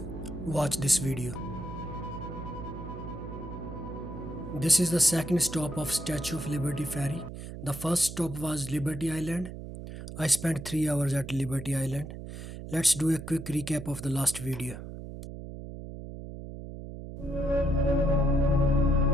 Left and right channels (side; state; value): right; noise; hum, 10 dB below the sound